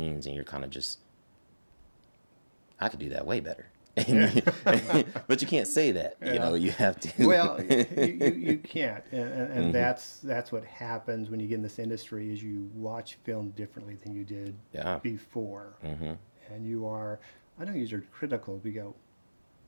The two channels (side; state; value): both; inverted; correlation -1.00